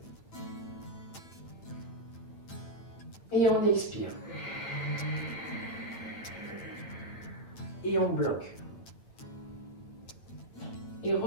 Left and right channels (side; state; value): right; late; 8.9 ms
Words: Et on expire. Et on bloque. Et